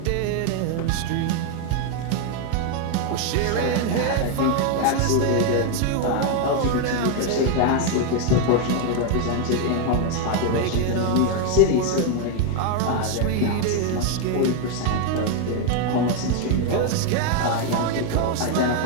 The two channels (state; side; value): different; both; correlation 0.01